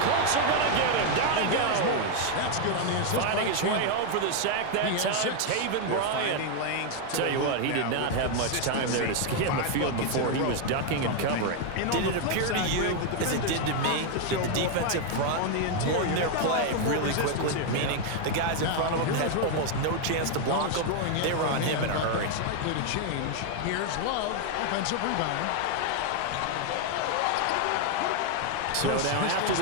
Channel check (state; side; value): different; both; correlation 0.01